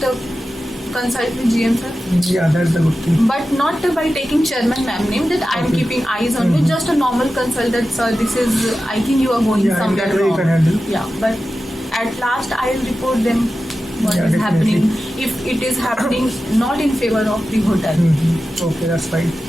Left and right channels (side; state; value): both; normal; correlation 0.93